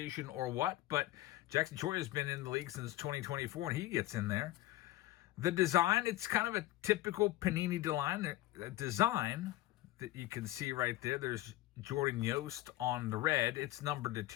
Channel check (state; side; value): quieter; right; 16.1 dB